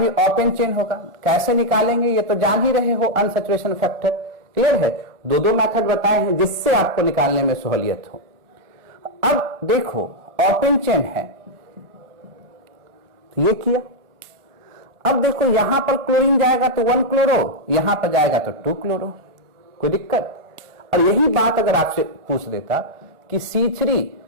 ओपन चेन होगा। कैसे निकालेंगे ये तो जान ही रहे हो, अनसैचुरेशन फैक्टर। क्लियर है? दो मेथड बताए हैं जिससे आपको निकालने में सहूलियत हो। अब देखो, ओपन चेन है तो ये किया। अब देखो यहां पर क्लोरीन जाएगा तो 1-क्लोरो, यहां पर जाएगा तो 2-क्लोरो। कोई दिक्कत? और यही बात अगर आपसे पूछ देता कि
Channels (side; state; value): left; late; 1.4 ms